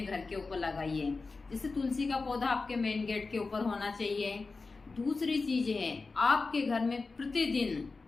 घर के ऊपर लगाइए। जैसे तुलसी का पौधा आपके मेन गेट के ऊपर होना चाहिए। दूसरी चीज है, आपके घर में प्रतिदिन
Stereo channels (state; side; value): quieter; right; 4.0 dB